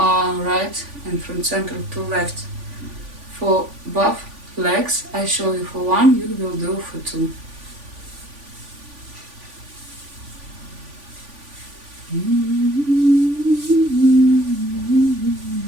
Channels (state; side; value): late; left; 3.5 ms